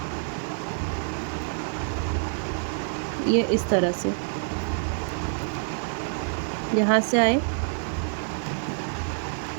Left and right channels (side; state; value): left; silent; 60 dB below the other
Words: ये इस तरह से यहाँ से आए,